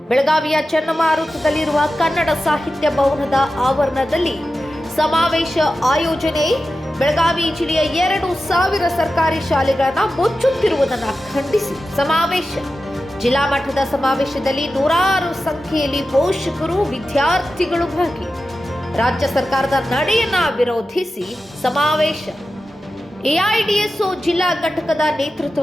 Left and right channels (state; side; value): normal; both; correlation 0.92